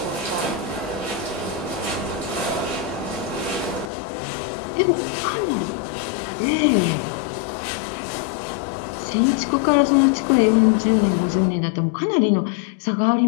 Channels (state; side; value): drops out; right; at 3.9 s